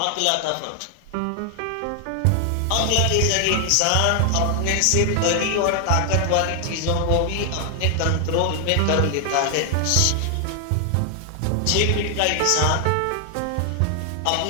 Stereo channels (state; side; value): different; both; correlation 0.00